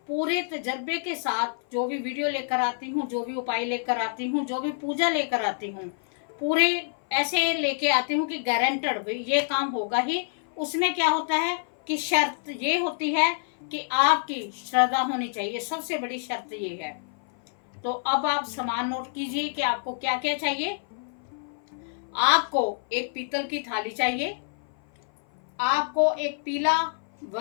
पूरे तजर्बे के साथ जो भी वीडियो लेकर आती हूँ, जो भी उपाय लेकर आती हूँ, जो भी पूजा लेकर आती हूँ, पूरे ऐसे लेके आती हूँ कि गारंटेड ये काम होगा ही। उसमें क्या होता है कि शर्त ये होती है कि आपकी श्रद्धा होनी चाहिए, सबसे बड़ी शर्त ये है। तो अब आप सामान नोट कीजिए कि आपको क्या क्या चाहिए। आपको एक पीतल की थाली चाहिए, आपको एक पीला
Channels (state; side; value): silent; right; 57 dB below the other